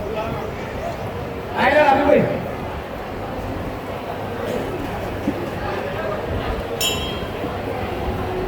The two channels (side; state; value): both; identical; correlation 1.00